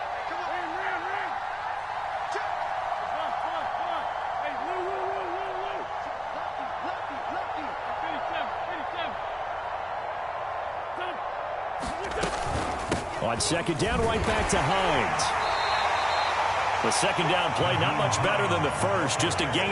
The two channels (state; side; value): identical; both; correlation 1.00